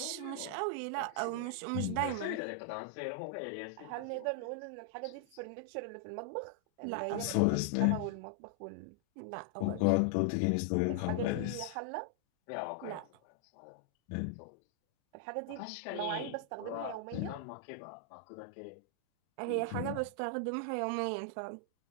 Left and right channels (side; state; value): both; different; correlation 0.00